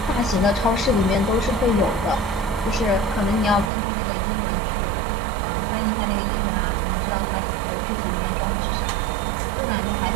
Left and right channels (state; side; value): drops out; left; at 3.7 s